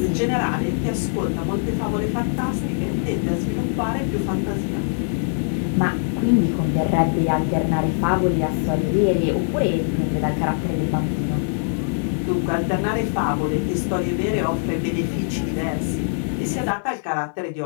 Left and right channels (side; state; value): right; silent; 64 dB below the other